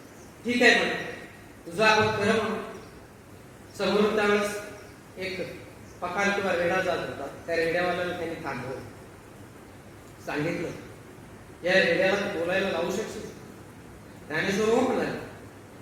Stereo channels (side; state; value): both; identical; correlation 1.00